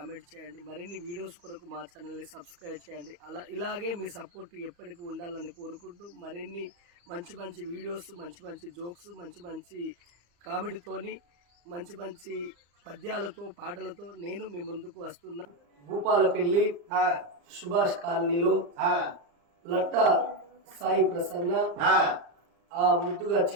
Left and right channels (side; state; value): left; late; 35 ms